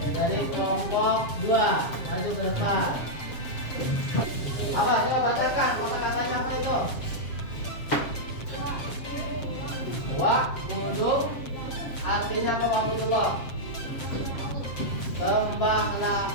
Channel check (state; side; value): late; right; 7.4 ms